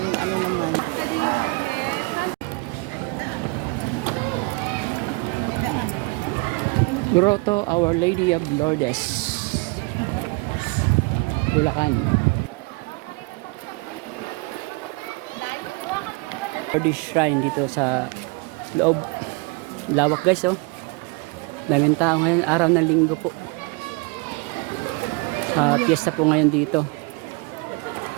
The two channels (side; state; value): left; quieter; 27.8 dB